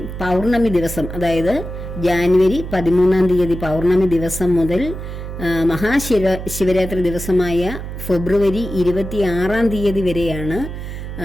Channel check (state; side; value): noise; right; hum, 8 dB below the sound